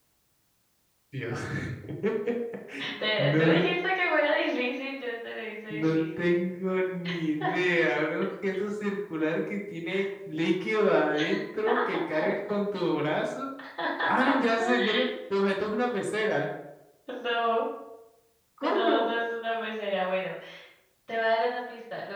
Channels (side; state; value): both; identical; correlation 1.00